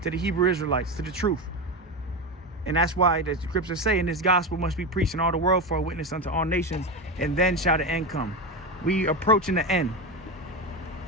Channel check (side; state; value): both; normal; correlation 0.17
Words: to the Hebrew Israelites, to the truth. And that's why the scriptures say, and this gospel must be preached in all the world for a witness unto all nations, and then shall the end come. We approaching the end,